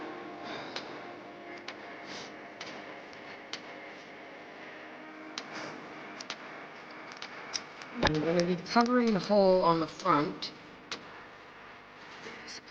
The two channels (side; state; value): both; identical; correlation 1.00